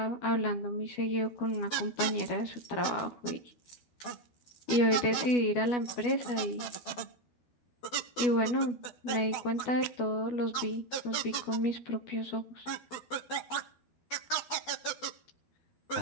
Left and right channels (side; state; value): right; late; 12 ms